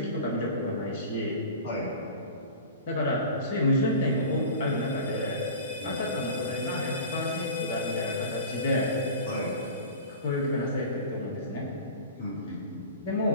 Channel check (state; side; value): inverted; both; correlation -0.35